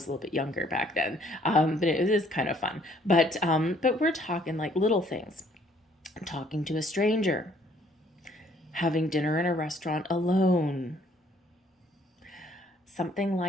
a little bit younger back then. But it is kind of fun. But we're talking like little things. Talking to a stranger. Having dinner in a restaurant alone, something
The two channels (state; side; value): normal; both; correlation 0.62